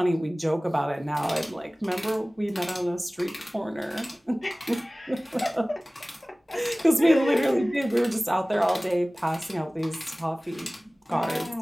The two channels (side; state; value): both; normal; correlation 0.98